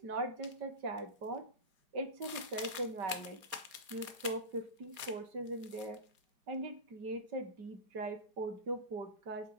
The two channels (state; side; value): late; left; 4.9 ms